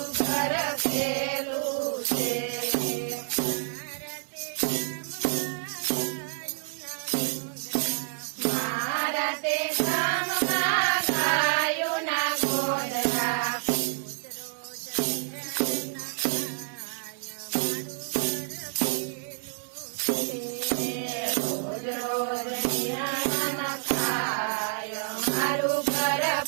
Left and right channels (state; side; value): silent; left; 59 dB below the other